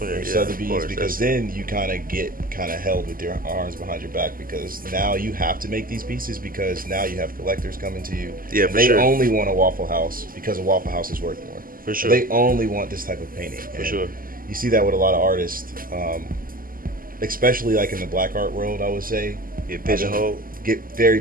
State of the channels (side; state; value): left; late; 0.41 ms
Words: or it, yeah, Sotheby's, of course. because then you kind of get kind of held with your arms behind your back, because now you have to make these pieces, because now you have collectors coming to you. Yeah, and for they sure. only want a Waffle House because a Waffle House is worth more. For sure. They only want this type of painting. For And sure. you see that with a lot of artists, especially like in the black art world, I would say. Get pigeonholed. Get very